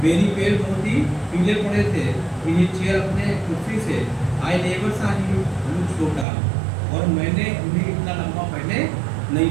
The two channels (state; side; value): drops out; left; at 6.2 s